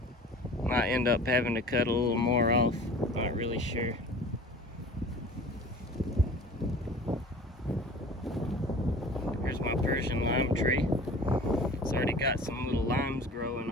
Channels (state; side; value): normal; both; correlation 0.43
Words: Might end up having to cut a little more off. Not really sure. Here's my Persian lime tree. It's already got some little limes growing